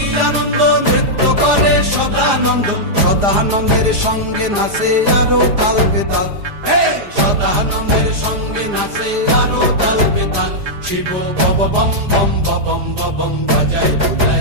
আনন্দ, নৃত্য করে সদানন্দ। সদানন্দের সঙ্গে নাচে আরো তাল বেতাল, সদানন্দের সঙ্গে নাচে আরো তাল বেতাল। শিব বব বম বম বাজায়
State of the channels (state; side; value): late; left; 4.9 ms